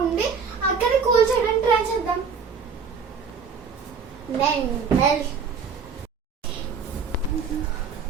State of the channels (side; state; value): left; quieter; 5.7 dB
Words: ఉండి అక్కని కూల్ చేయడానికి ట్రై చేద్దాం.